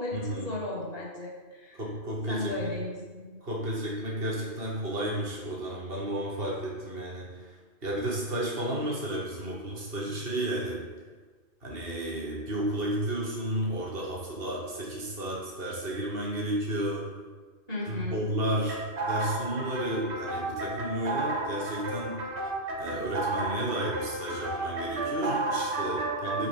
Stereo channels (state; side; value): late; left; 2.7 ms